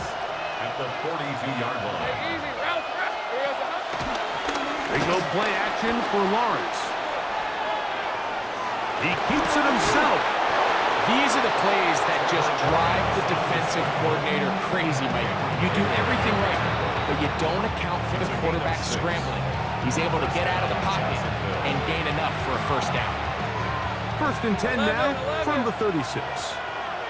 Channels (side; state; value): both; identical; correlation 1.00